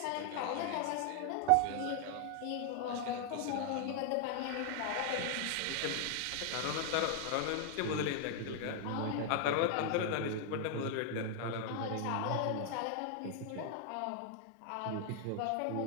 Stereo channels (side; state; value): both; different; correlation 0.00